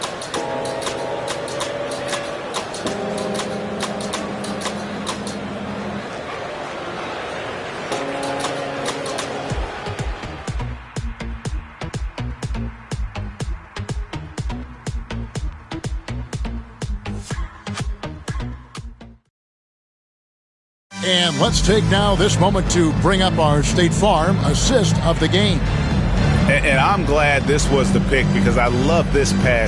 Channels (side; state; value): both; identical; correlation 1.00